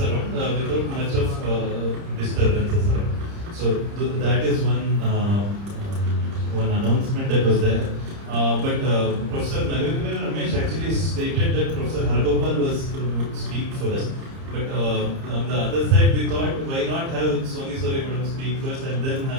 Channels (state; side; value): late; left; 30 ms